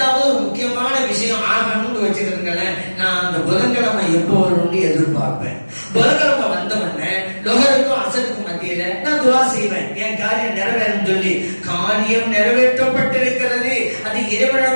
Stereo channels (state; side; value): inverted; both; correlation -1.00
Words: ஒரு முக்கியமான விஷயம் ஆகணும்னு வச்சிருக்கேன், நான் அந்த புதன்கிழமை எப்போ வரும்னு எதிர்பார்ப்பேன். புதன்கிழமை வந்த உடனே லுஹருக்கும் அஸருக்கும் மத்தியில நான் துஆ செய்வேன், என் காரியம் நிறைவேறும் சொல்லி. காரியம் நிறைவேற்றப்பட்டிருக்கிறது, அது